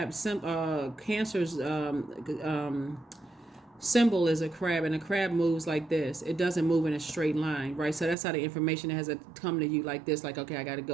Cancer's symbol is a crab, and a crab moves like this. It doesn't move in a straight line, right? So that's how the information has to come to you like this, like, okay, I got to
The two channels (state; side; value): drops out; left; at 8.2 s